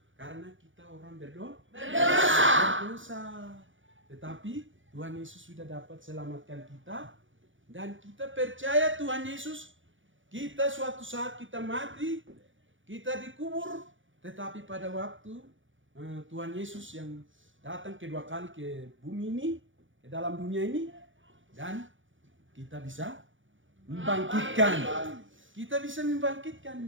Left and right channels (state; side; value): late; left; 0.56 ms